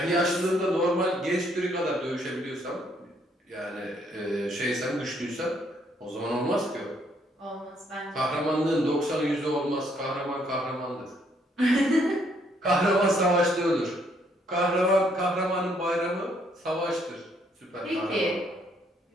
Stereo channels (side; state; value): both; normal; correlation 0.69